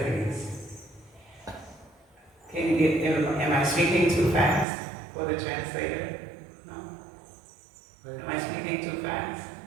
Am I speaking too fast for the translator? No? Am I speaking too fast?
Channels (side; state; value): left; drops out; at 4.7 s